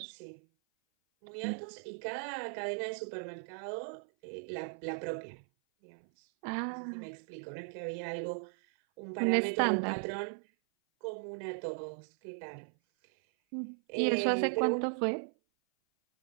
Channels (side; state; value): left; silent; 53 dB below the other